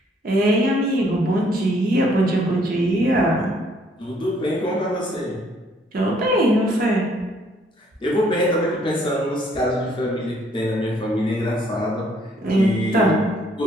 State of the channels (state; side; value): normal; both; correlation 0.65